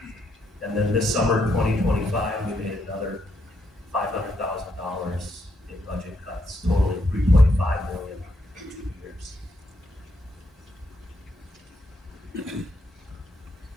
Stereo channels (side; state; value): both; normal; correlation 0.77